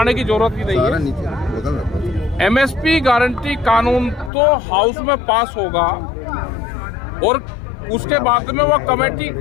की जरूरत ही नहीं है। MSP गारंटी कानून तो हाउस में पास होगा और उसके बाद में वो कमेटी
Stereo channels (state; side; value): drops out; right; at 4.3 s